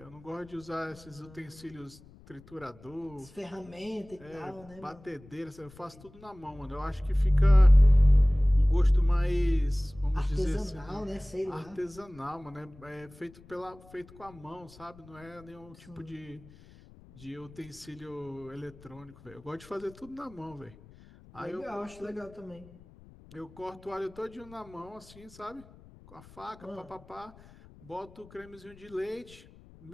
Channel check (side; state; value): left; noise; rumble, 22 dB below the sound